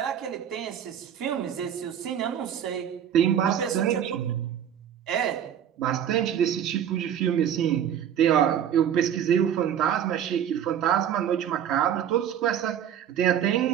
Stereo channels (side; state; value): left; quieter; 9.5 dB